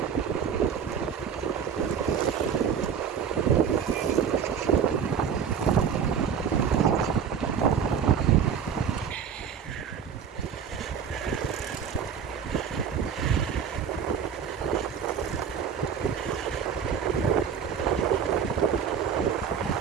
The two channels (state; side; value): quieter; left; 7.4 dB